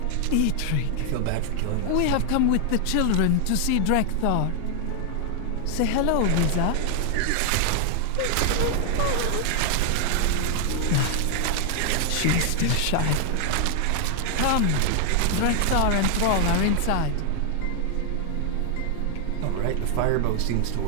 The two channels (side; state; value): both; different; correlation 0.00